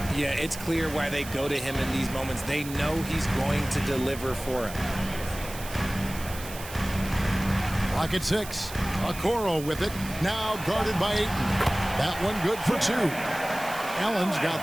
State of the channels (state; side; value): noise; right; hiss, 13 dB below the sound